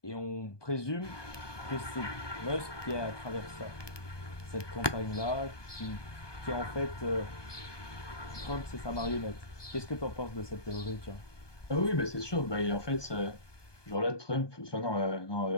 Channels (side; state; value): right; late; 1.2 ms